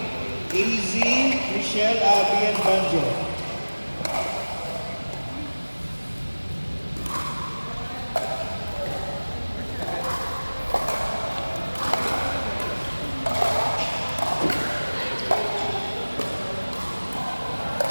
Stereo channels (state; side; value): inverted; both; correlation -1.00